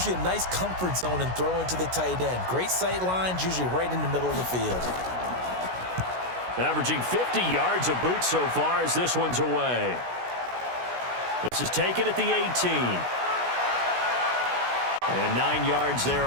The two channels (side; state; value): left; late; 16 ms